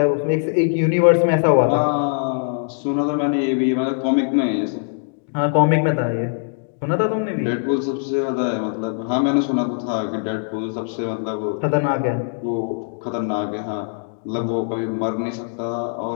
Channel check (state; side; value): silent; right; digital silence